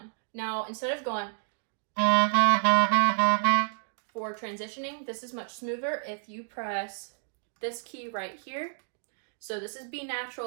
Now, instead of going for transitioning, this is much smoother if you press this key right here. So this is B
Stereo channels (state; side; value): silent; left; digital silence